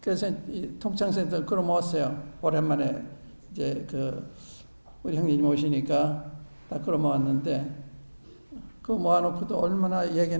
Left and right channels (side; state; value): both; inverted; correlation -1.00